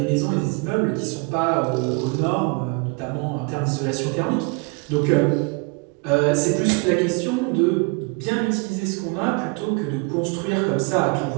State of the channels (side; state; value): left; quieter; 31.2 dB